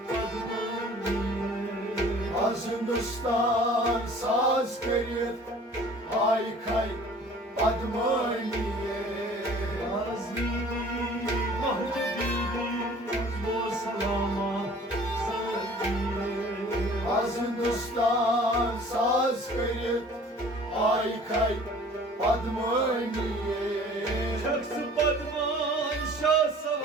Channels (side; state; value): both; normal; correlation 0.49